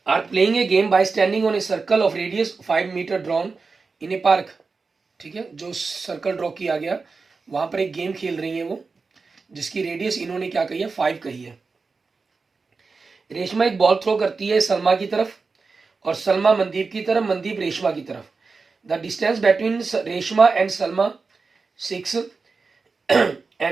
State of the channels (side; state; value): left; quieter; 4.4 dB